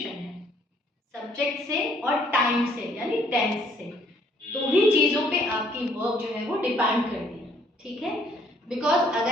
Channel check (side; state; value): both; normal; correlation 0.64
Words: है, सब्जेक्ट से और टाइम से यानी टेंस से। दो ही चीज़ों पे आपकी वर्ब जो है वो डिपेंड करती है, ठीक है। बिकॉज